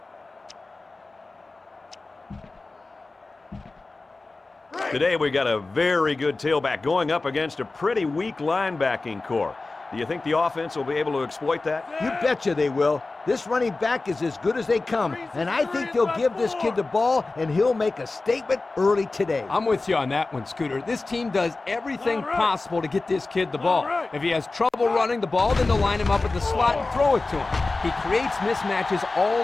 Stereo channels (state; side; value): quieter; right; 3.4 dB